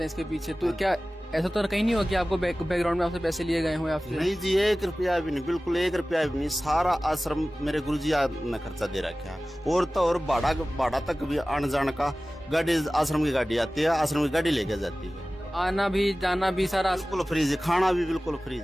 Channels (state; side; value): normal; both; correlation 0.97